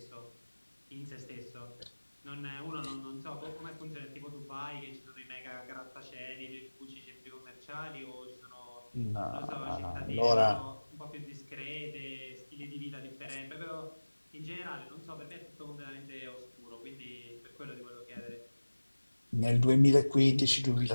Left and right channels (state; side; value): inverted; both; correlation -1.00